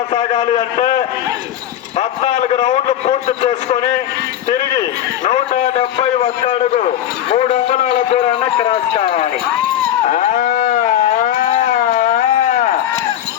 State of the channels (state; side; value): quieter; right; 11.3 dB